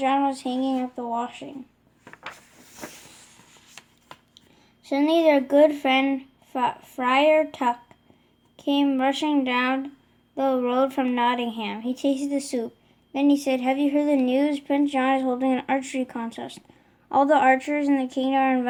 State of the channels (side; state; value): both; identical; correlation 1.00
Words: was hanging up the washing. Suddenly their good friend Friar Tuck came rushing down the road from Nottingham. He tasted the soup. Then he said, "Have you heard the news? Prince John is holding an archery contest. All the archers in the kingdom are